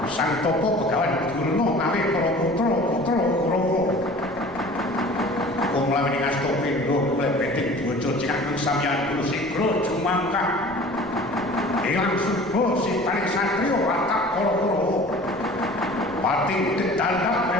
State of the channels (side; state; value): left; noise; rumble, 22 dB below the sound